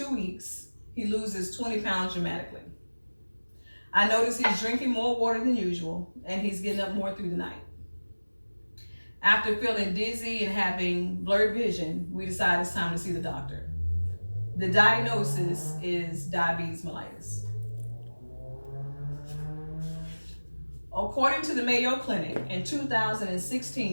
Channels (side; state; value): both; inverted; correlation -1.00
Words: weeks, he loses 20 pounds dramatically. I notice he's drinking more water than usual and he's getting up more through the night. After feeling dizzy and having blurred vision, we decide it's time to see the doctor. The diagnosis is diabetes mellitus. According to the Mayo Clinic, in